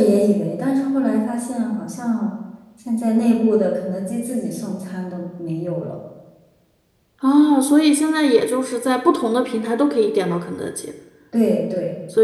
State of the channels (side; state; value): both; identical; correlation 1.00